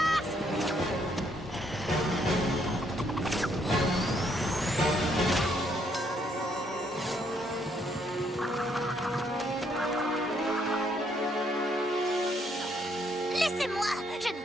Laissez-moi! Je n'ai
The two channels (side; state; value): both; normal; correlation 0.71